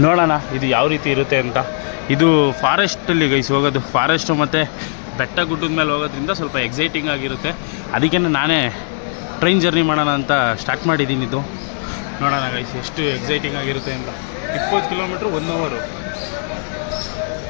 ನೋಡೋಣ ಇದು ಯಾವ ರೀತಿ ಇರುತ್ತೆ ಅಂತ. ಇದು ಫಾರೆಸ್ಟಲ್ಲಿ ಗೈಸ್ ಹೋಗೋದು. ಫಾರೆಸ್ಟು ಮತ್ತು ಬೆಟ್ಟ ಗುಡ್ಡದ ಮೇಲೆ ಹೋಗೋದ್ರಿಂದ ಸ್ವಲ್ಪ ಎಕ್ಸೈಟಿಂಗ್ ಆಗಿರುತ್ತೆ. ಅದಕ್ಕೆ ನಾನೇ ಟ್ರೈನ್ ಜರ್ನಿ ಮಾಡೋಣ ಅಂತ ಸ್ಟಾರ್ಟ್ ಮಾಡಿದ್ದೀನಿ. ಇದು ನೋಡೋಣ ಗೈಸ್ ಎಷ್ಟು ಎಕ್ಸೈಟಿಂಗ್ ಆಗಿರುತ್ತೆ ಅಂತ. 20 ಕಿಲೋಮೀಟ್ರ್ 1 ಅವರು.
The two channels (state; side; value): silent; right; digital silence